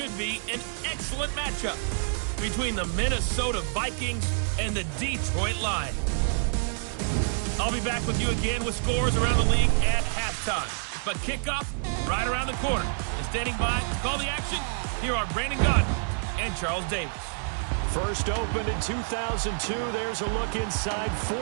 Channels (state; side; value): silent; left; digital silence